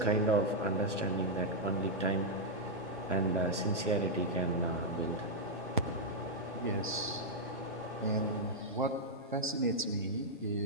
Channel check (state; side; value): normal; both; correlation -0.04